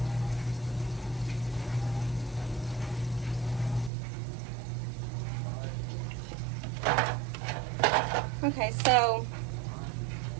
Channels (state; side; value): drops out; left; at 3.9 s